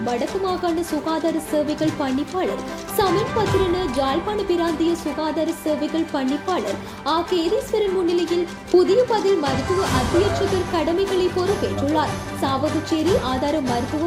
வடக்கு மாகாண சுகாதார சேவைகள் பணிப்பாளர் சமன் பத்திரன, ஜாழ்ப்பாண பிராந்திய சுகாதார சேவைகள் பணிப்பாளர் ஆ. கேதீஸ்வரன் முன்னிலையில் புதிய பதில் மருத்துவ அத்தியட்சகர் கடமைகளை பொறுப்பேற்றுள்ளார். சாவகச்சேரி ஆதார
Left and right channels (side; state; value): both; identical; correlation 1.00